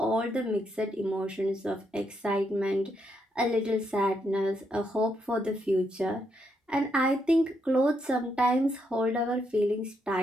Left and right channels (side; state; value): both; normal; correlation 0.78